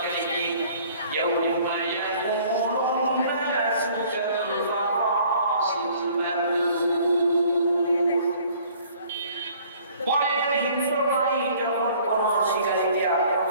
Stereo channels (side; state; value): both; inverted; correlation -0.55